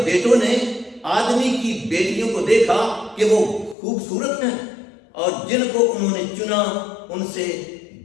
بیٹوں نے آدمی کی بیٹیوں کو دیکھا کہ وہ خوبصورت ہیں، اور جن کو انہوں نے چنا ان سے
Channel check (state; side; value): drops out; right; at 3.8 s